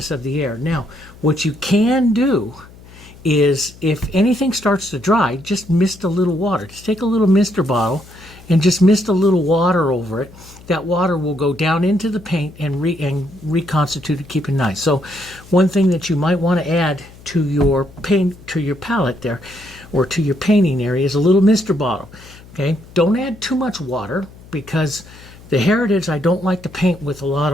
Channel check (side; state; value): left; noise; hum, 21 dB below the sound